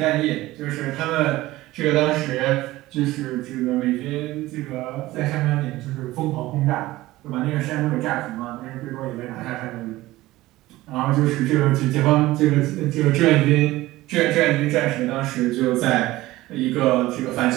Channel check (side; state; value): left; quieter; 17.6 dB